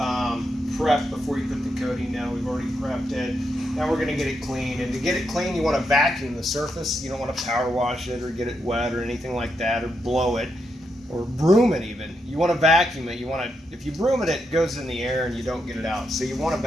prep before you put the coating down. We've already prepped it. Now we're going to get it clean. And to get it clean, you want to vacuum the surface. You don't want to power wash it or get it wet or anything like that, or blow it or broom it even. You want to vacuum it. You want to, if you broom it, it goes in the air and you don't get it out. So you want to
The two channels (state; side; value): normal; both; correlation 0.82